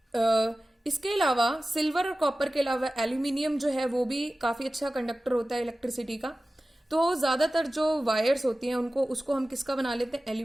इसके अलावा सिल्वर और कॉपर के अलावा एल्यूमिनियम जो है वो भी काफी अच्छा कंडक्टर होता है इलेक्ट्रिसिटी का। तो ज्यादातर जो वायर्स होती हैं उसको हम किसका बना लेते हैं,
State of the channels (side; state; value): both; normal; correlation 0.96